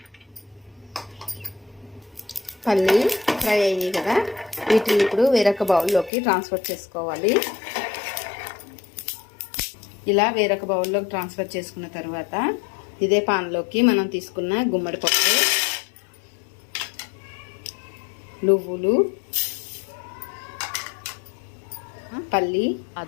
పల్లి ఫ్రై అయ్యాయి కదా, వీటిని ఇప్పుడు వేరొక బౌల్లోకి ట్రాన్స్ఫర్ చేసుకోవాలి. ఇలా వేరొక బౌల్లోకి ట్రాన్స్ఫర్ చేసుకున్న తర్వాత ఇదే పాన్లోకి మనం తీసుకున్న గుమ్మడి పప్పు, నువ్వులు, పల్లి,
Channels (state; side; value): drops out; right; at 6.1 s